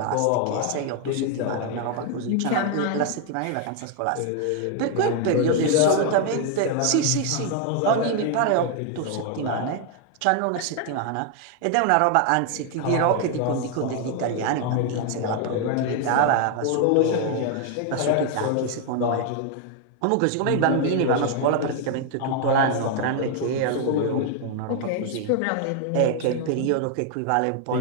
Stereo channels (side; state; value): both; different; correlation 0.00